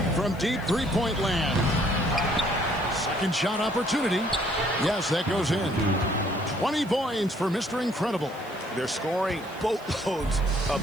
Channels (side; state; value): right; noise; hiss, 24 dB below the sound